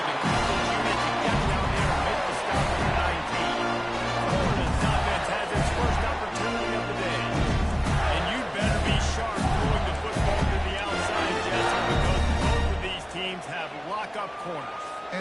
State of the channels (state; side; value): identical; both; correlation 1.00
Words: the coverage unit to get down there and make the stop at the 19. Florida's offense has its first opportunity of the day. And you better be sharp throwing the football to the outside, Jesse, because both of these teams have lock-up corners.